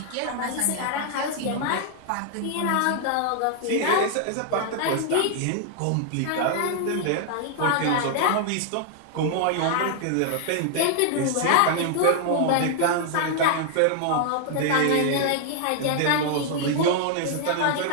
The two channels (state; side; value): different; both; correlation 0.00